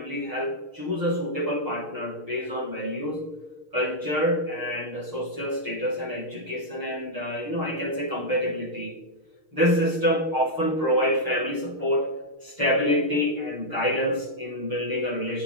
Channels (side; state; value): left; late; 6.5 ms